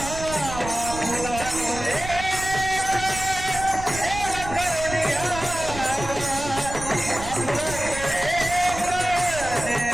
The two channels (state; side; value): noise; right; rumble, 10 dB below the sound